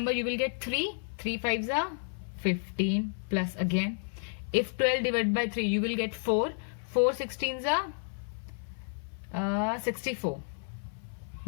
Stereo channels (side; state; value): right; silent; 57 dB below the other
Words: you will get 3. 3 5s are 15 plus again, if 12 divided by 3, you will get 4. 4 16s are 64